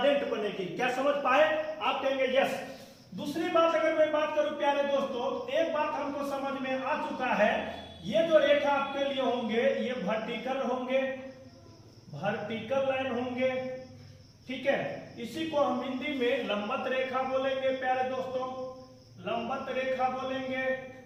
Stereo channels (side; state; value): both; identical; correlation 1.00